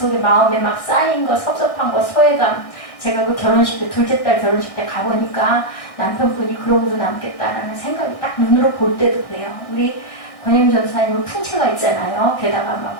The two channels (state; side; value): late; right; 1.6 ms